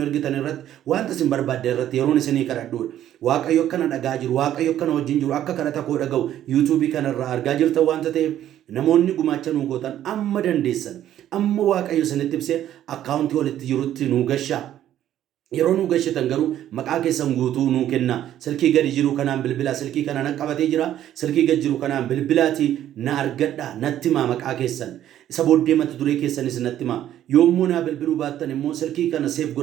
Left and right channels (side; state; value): left; quieter; 11.7 dB